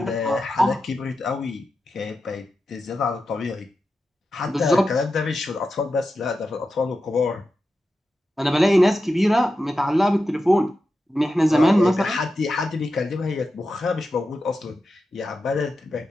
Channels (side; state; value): both; normal; correlation 0.90